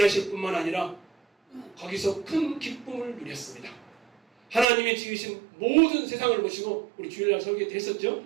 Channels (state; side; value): drops out; left; at 4.7 s